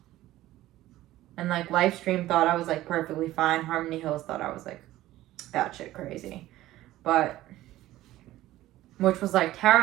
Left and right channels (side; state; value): left; quieter; 15.5 dB